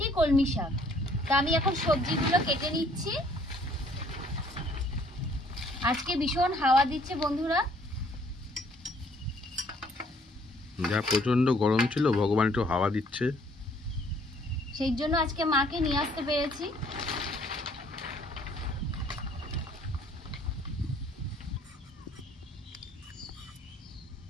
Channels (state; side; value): normal; both; correlation 0.61